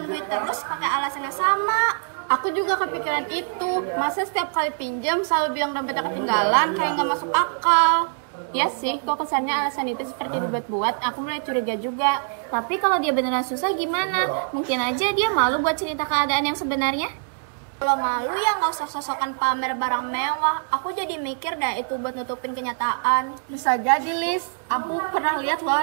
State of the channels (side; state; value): left; silent; digital silence